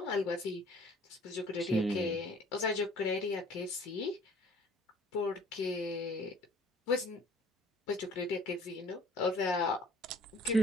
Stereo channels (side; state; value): both; normal; correlation 0.53